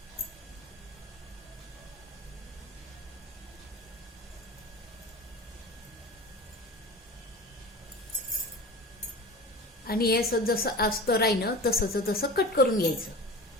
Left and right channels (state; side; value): normal; both; correlation 0.34